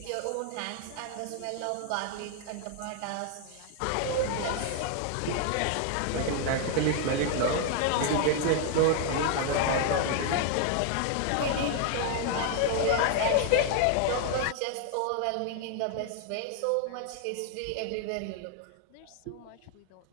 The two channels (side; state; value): both; different; correlation 0.00